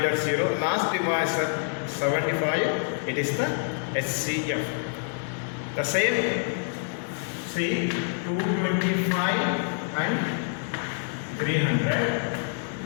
0. Last divisor 75, it is the HCF. The same, see 225 and 300.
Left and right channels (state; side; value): silent; right; digital silence